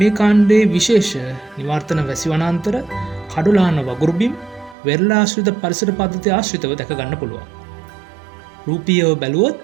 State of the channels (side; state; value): left; drops out; at 4.8 s